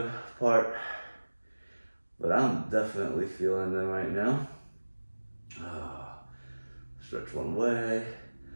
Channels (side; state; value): both; inverted; correlation -1.00